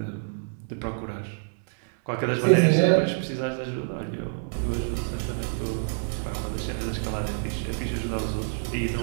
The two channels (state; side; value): silent; left; digital silence